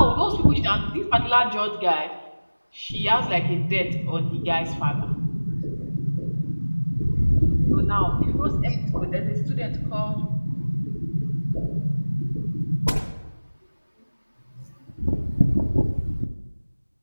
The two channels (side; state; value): both; inverted; correlation -1.00